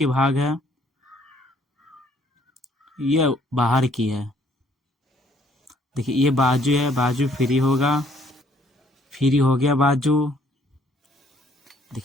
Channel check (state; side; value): normal; both; correlation 0.64